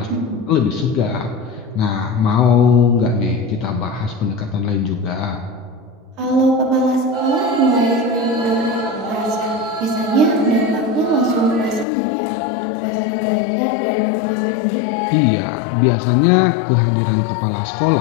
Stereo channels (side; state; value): right; drops out; at 11.9 s